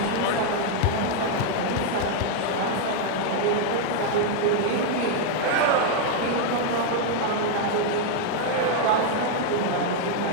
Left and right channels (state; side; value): different; both; correlation 0.00